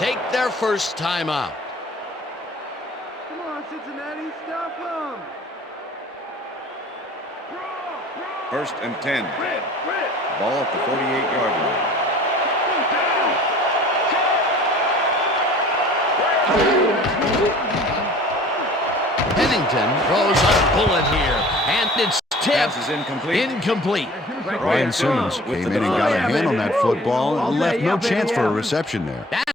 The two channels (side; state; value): both; normal; correlation 0.47